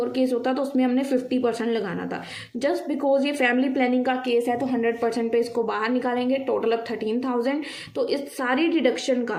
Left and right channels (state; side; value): identical; both; correlation 1.00